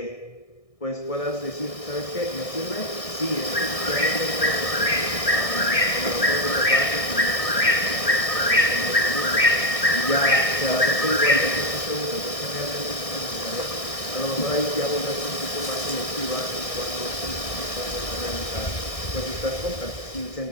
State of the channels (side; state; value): right; late; 1.6 ms